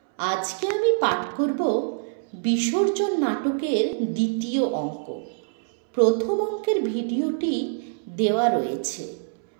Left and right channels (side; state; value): left; silent; 62 dB below the other